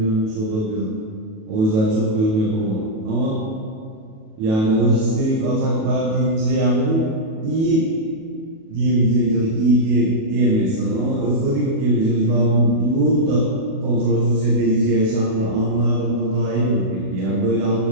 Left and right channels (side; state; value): left; late; 37 ms